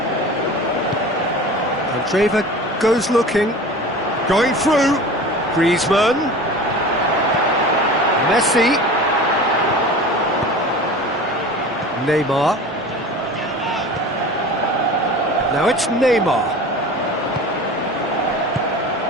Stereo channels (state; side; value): normal; both; correlation 0.37